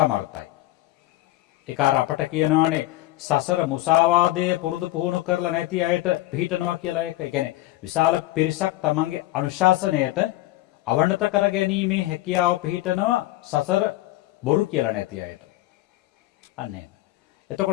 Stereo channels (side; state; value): right; quieter; 16.8 dB